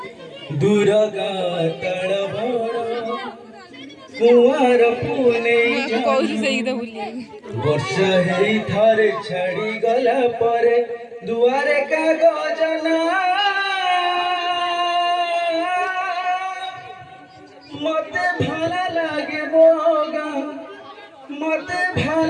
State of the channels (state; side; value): identical; both; correlation 1.00